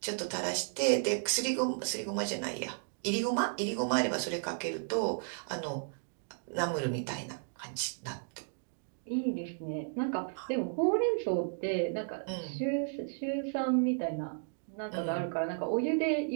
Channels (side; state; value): left; silent; digital silence